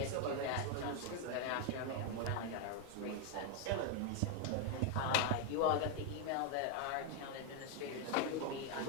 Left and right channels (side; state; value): both; different; correlation 0.01